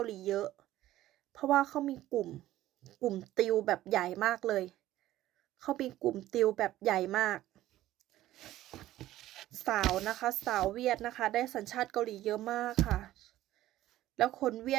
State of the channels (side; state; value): left; quieter; 14.6 dB